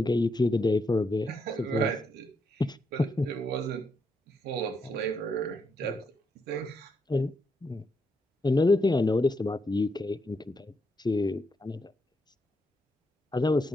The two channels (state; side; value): normal; both; correlation 0.80